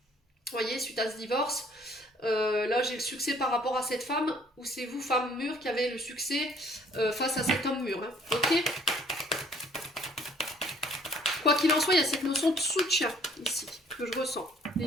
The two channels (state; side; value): normal; both; correlation 0.59